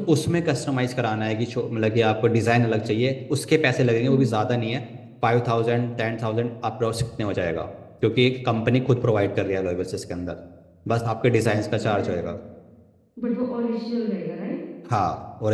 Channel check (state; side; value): identical; both; correlation 1.00